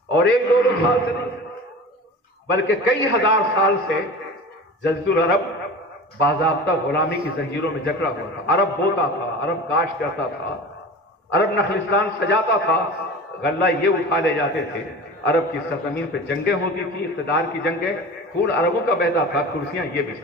اور ایک دو سال سے نہیں بلکہ کئی ہزار سال سے جزیرۃ العرب باضابطہ غلامی کی زنجیروں میں جکڑا ہوا تھا. عرب بوتا تھا، عرب کاشت کرتا تھا، عرب نخلستان سجاتا تھا، غلہ یہ اٹھا لے جاتے تھے. عرب کی سرزمین پہ جنگیں ہوتی تھی، اقتدار کی جنگیں، خون عربوں کا بہتا تھا، کرسیاں یہ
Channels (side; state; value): both; normal; correlation 0.35